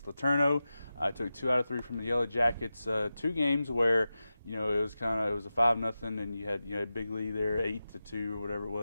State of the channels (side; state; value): both; inverted; correlation -0.93